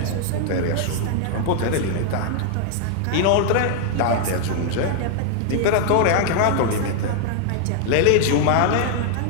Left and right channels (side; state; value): both; different; correlation 0.00